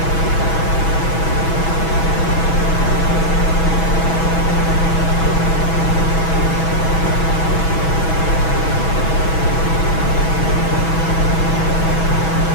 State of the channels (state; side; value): late; right; 6.1 ms